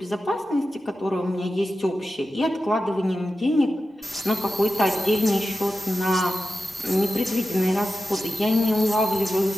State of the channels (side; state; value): both; normal; correlation 0.92